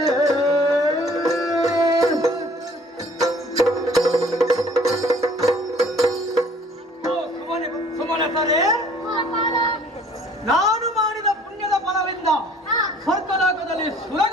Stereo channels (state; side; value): normal; both; correlation 0.54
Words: ಸುಮನಸರೇ, ನಾನು ಮಾಡಿದ ಪುಣ್ಯದ ಫಲವಿಂದ ಸ್ವರ್ಗಲೋಕದಲ್ಲಿ